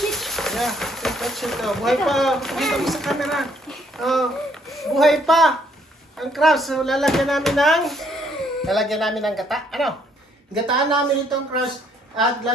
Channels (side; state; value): both; normal; correlation 0.67